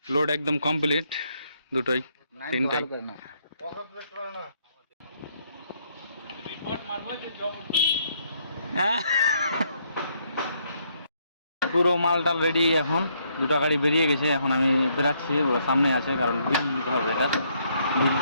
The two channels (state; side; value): inverted; both; correlation -0.71